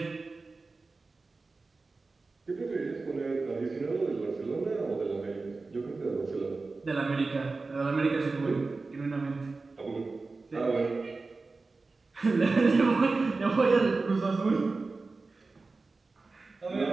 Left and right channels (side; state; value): left; quieter; 3.8 dB